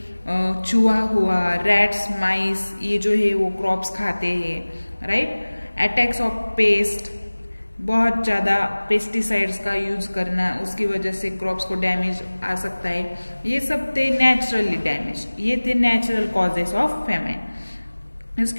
चूहा हुआ, रैट्स, माइस, ये जो है वो क्रॉप्स खाते हैं, राइट। अटैक्स ऑफ पेस्ट, बहुत ज्यादा पेस्टिसाइड्स का यूज करना, उसकी वजह से क्रॉप्स को डैमेज आ सकता है। ये सब थे नेचुरली डैमेज, ये थे नेचुरल कॉजेस ऑफ फेमाइन।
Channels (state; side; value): inverted; both; correlation -1.00